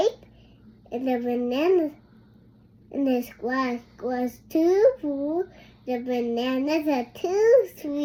and the bananas in the sky was too blue. The bananas are too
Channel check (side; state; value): both; identical; correlation 1.00